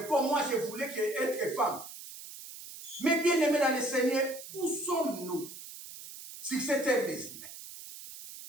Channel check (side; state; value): right; noise; hiss, 13 dB below the sound